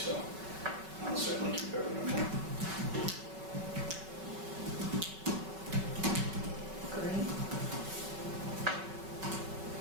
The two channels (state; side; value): late; left; 5.3 ms